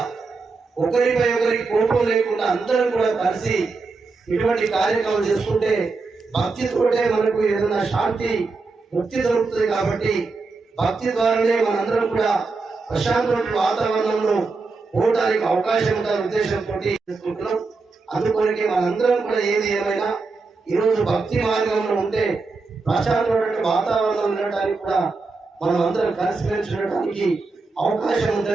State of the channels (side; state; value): left; quieter; 4.1 dB